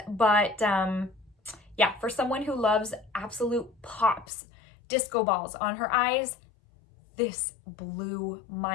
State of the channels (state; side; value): drops out; right; at 4.2 s